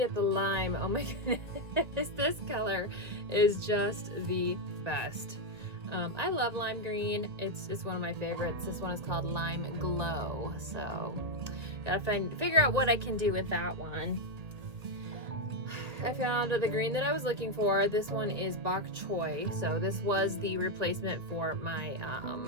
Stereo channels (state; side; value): late; left; 1.6 ms